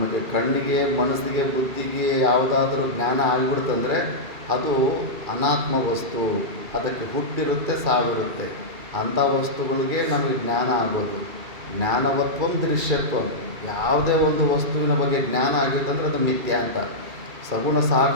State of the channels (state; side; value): late; left; 2.4 ms